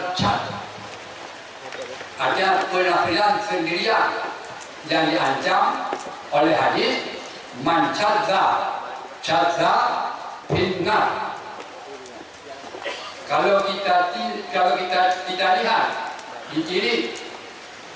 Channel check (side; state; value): both; identical; correlation 1.00